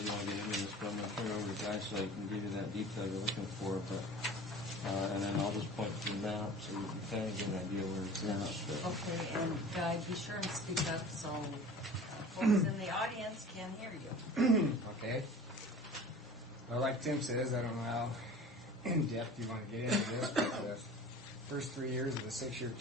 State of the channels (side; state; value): both; normal; correlation 0.41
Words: you want to get into this, but I'm going to turn it over to Guy so I can give you that detail you're looking for. But and then I'll just point to the map so you can kind of get an idea where it's at. Okay, and Guy, be sure and speak up so folks in the audience can hear you. Okay. Well, like Tim says, I don't know how in depth you want to get into this, but the first 3 years of the 6-year